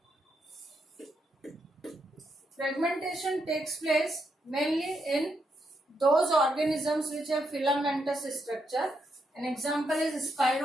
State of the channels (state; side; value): normal; both; correlation 0.80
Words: Fragmentation takes place mainly in those organisms which have filamentous structure. An example is